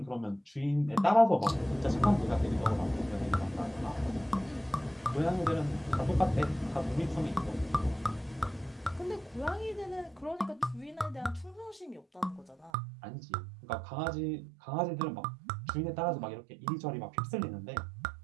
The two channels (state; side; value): drops out; left; at 12.7 s